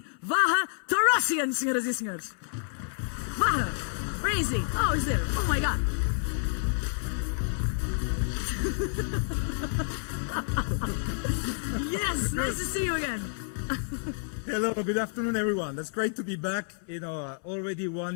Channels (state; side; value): silent; right; 58 dB below the other